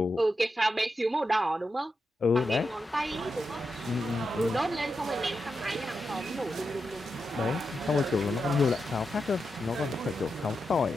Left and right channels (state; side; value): normal; both; correlation 0.87